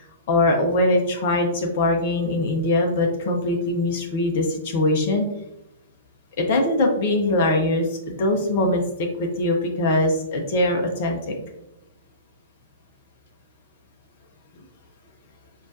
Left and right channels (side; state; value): both; inverted; correlation -0.30